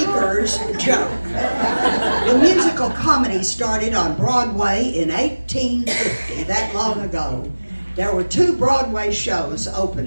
joke. The musical comedy started on Broadway in 1850, that long ago. There were 2 Broadway shows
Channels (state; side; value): inverted; both; correlation -1.00